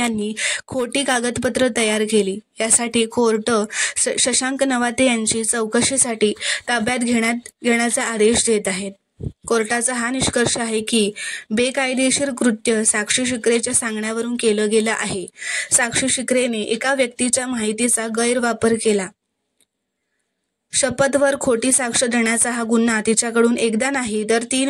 खोटी कागदपत्र तयार केली. यासाठी कोर्ट शशांक नवाते यांची चौकशीसाठी ताब्यात घेण्याचा आदेश देत आहेत. कोर्टाचा हा निष्कर्ष आहे की बेकायदेशीर कृत्य साक्षी शिकरेच्या सांगण्यावरून केलं गेलं आहे. साक्षी शिकरेने एका व्यक्तीच्या माहितीचा गैरवापर केला. शपथवर खोटी साक्ष देण्याचा हा गुन्हा तिच्याकडून एकदा नाही तर 3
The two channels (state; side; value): identical; both; correlation 1.00